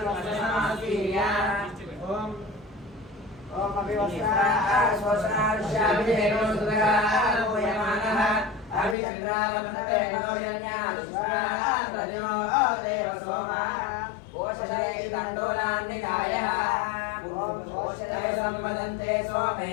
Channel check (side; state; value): right; drops out; at 9.0 s